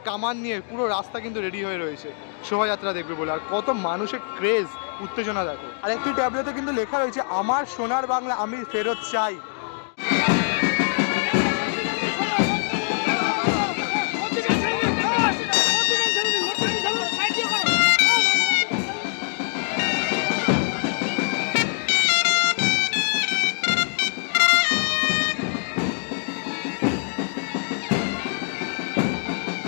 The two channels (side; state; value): right; silent; 60 dB below the other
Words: কামান নিয়ে পুরো রাস্তা কিন্তু রেডি হয়ে রয়েছে শোভাযাত্রা দেখবে বলে। আর কত মানুষের ক্রেজ, উত্তেজনা দেখো। আর একটি ট্যাবলেটে কিন্তু লেখা রয়েছে আমার সোনার বাংলা আমি ফেরত চাই।